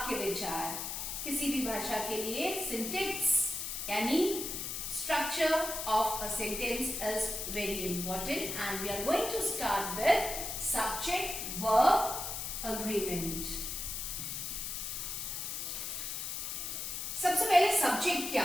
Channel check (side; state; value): left; noise; hiss, 4 dB below the sound